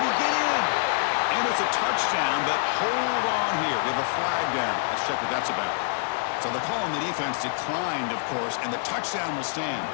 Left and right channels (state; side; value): silent; right; digital silence